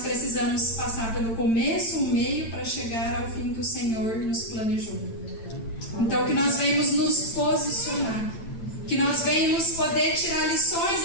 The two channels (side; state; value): right; late; 8.9 ms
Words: precisamos passar pelo começo, o meio, para chegar ao fim que o Senhor nos planejou. Então que nós venhamos nos posicionar, que nós venhamos poder tirar lições